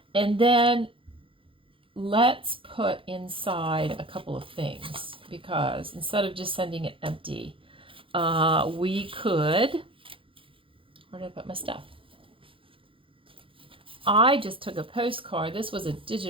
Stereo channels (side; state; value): left; late; 0.25 ms